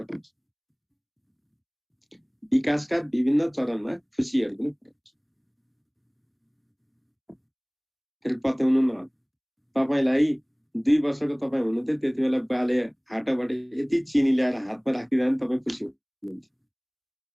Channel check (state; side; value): identical; both; correlation 1.00